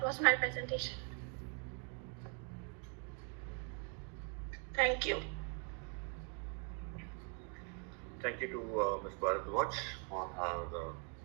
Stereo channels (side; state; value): left; quieter; 39.9 dB